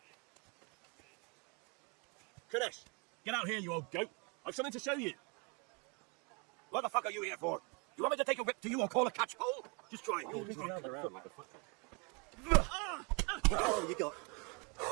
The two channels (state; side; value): quieter; left; 32.7 dB